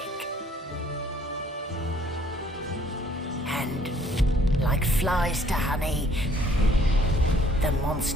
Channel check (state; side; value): normal; both; correlation 0.60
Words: And, like flies to honey, the